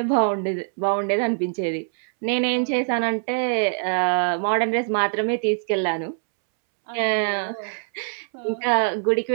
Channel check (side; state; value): left; silent; 63 dB below the other